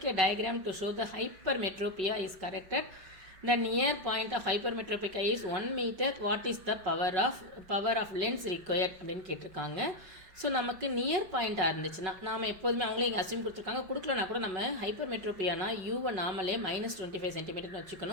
a diagram to show the hypermetropia is corrected. The near point of hypermetropia is 1 meter. What is the power of lens required அப்படின்னு கேட்டிருக்காங்க. So நமக்கு near பாயிண்ட்டாக இருந்துச்சுன்னா நாம் எப்போதுமே அவங்களே இங்கே assume கொடுத்துருக்காங்க. கொடுக்கலனா கூட நம்ம ஹைப்பர்மெட்ரோபியானா யூவை நாமளே -25 சென்டிமீட்டர்னு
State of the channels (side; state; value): left; late; 5.3 ms